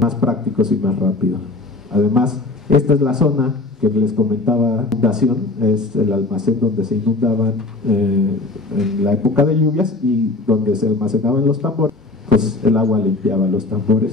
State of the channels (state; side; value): quieter; right; 3.3 dB